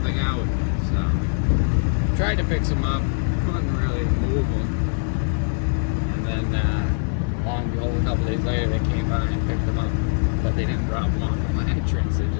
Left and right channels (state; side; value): silent; right; digital silence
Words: out. So tried to pick some up, couldn't really move them, and then lo and behold, a couple days later they came by and picked them up, but they didn't drop them off at my entrance, they